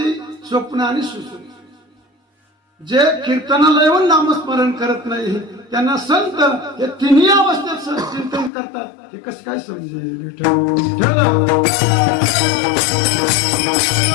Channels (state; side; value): drops out; right; at 8.5 s